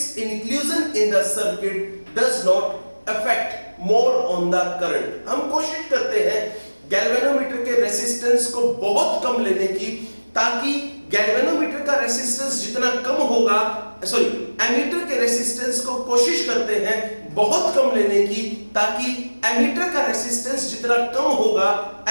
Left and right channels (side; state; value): both; inverted; correlation -1.00